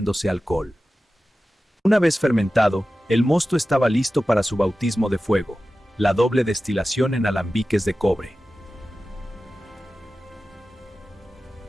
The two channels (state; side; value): normal; both; correlation 0.95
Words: alcohol. Una vez fermentado, el mosto estaba listo para su bautismo de fuego, la doble destilación en alambiques de cobre.